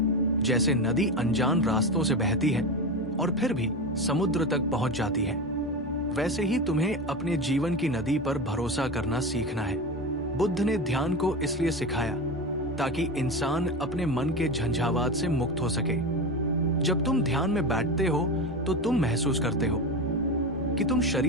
जैसे नदी अनजान रास्तों से बहती है और फिर भी समुद्र तक पहुंच जाती है, वैसे ही तुम्हें अपने जीवन की नदी पर भरोसा करना सीखना है। बुद्ध ने ध्यान को इसलिए सिखाया ताकि इंसान अपने मन के झंझावात से मुक्त हो सके। जब तुम ध्यान में बैठते हो तो तुम महसूस करते हो कि तुम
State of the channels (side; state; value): both; normal; correlation 0.21